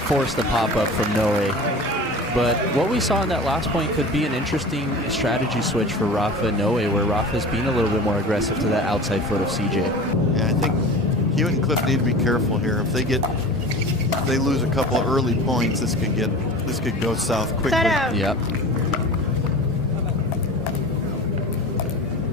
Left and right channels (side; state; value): both; normal; correlation 0.36